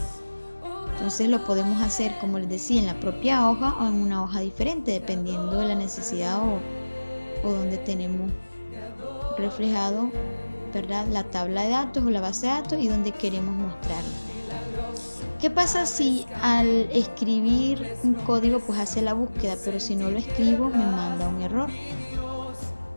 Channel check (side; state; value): both; inverted; correlation -1.00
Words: Entonces lo podemos hacer, como les decía, en la propia hoja o en una hoja diferente, dependiendo de la necesidad o donde tenemos reflejado, ¿verdad?, la tabla de datos o la base de datos y donde queremos mostrarla. ¿Qué pasa si al escribir un código pues hace la búsqueda, pero si no lo escribo me manda un error